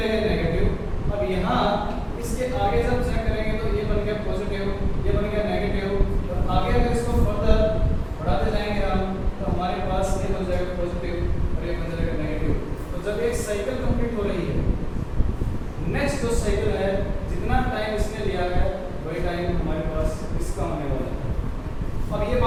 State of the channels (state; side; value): identical; both; correlation 1.00